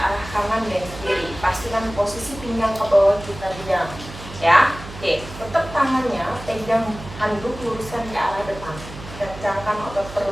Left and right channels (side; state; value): right; noise; hum, 14 dB below the sound